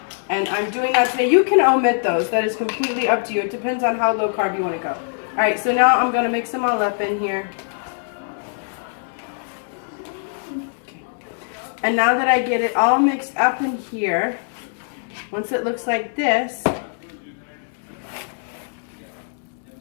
And I'm doing that today. You can omit those. That is completely up to you. It depends on how low carb you want to go. All right, so now I'm going to mix them all up in here. Okay. And now that I get it all mixed up in here, once it looks like this,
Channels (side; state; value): right; silent; digital silence